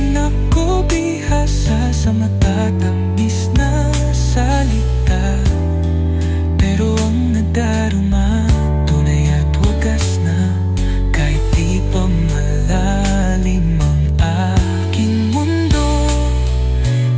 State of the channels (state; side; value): identical; both; correlation 1.00